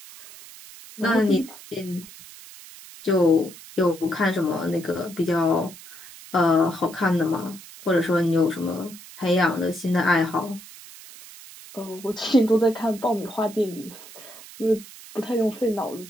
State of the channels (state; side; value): noise; right; hiss, 18 dB below the sound